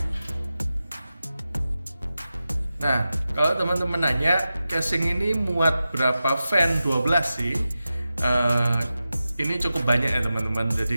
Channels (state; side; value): inverted; both; correlation -0.93